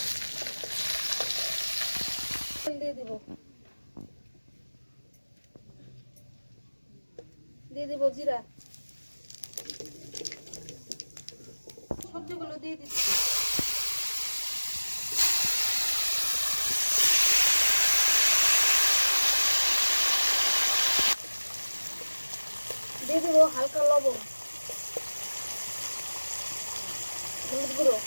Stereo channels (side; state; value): both; inverted; correlation -1.00